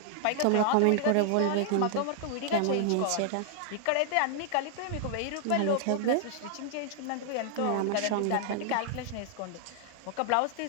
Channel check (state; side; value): different; both; correlation 0.00